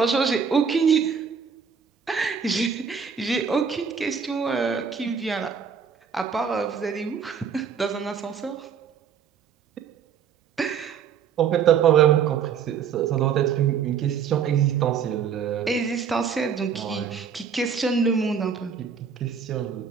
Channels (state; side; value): quieter; left; 6.9 dB